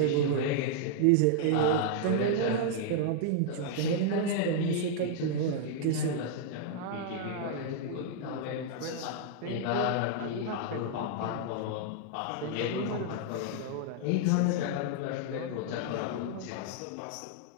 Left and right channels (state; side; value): different; both; correlation -0.01